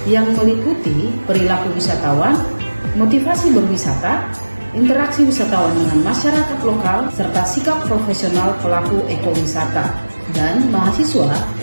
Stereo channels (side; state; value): both; inverted; correlation -1.00